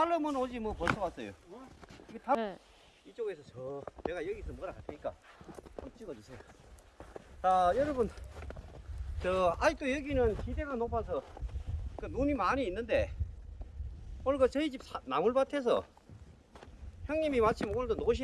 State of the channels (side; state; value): both; identical; correlation 1.00